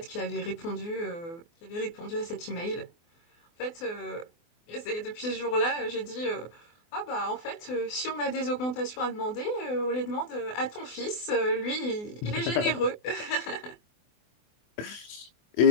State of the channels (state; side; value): late; right; 24 ms